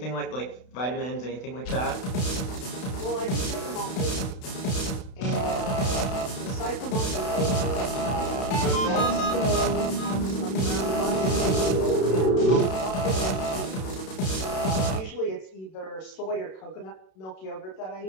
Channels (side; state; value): right; late; 32 ms